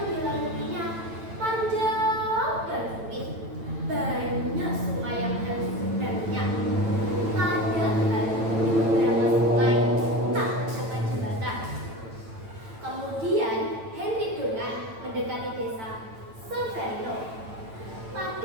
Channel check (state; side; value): late; left; 9.0 ms